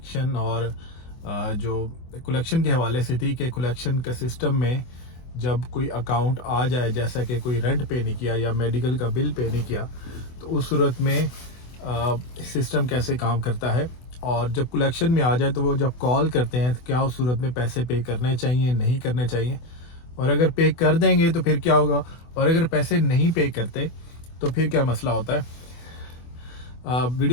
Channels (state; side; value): late; right; 24 ms